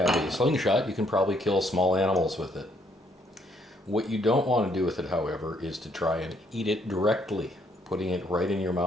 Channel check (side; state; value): both; normal; correlation 0.69